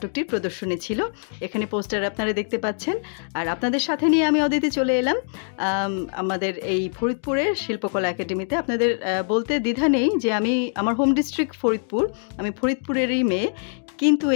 প্রদর্শনী ছিল। এখানে পোস্টার আপনারা দেখতে পাচ্ছেন। আর আপনাদের সাথে নিয়ে আমি অদিতি চলে এলাম আমাদের এই ফরিদপুরের শিল্পকলা একাডেমিতে। আপনাদের বলতে দ্বিধা নেই যে আমার হোম ডিস্ট্রিক্ট ফরিদপুর, আমি ফরিদপুরেরই মেয়ে, কিন্তু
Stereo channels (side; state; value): right; silent; digital silence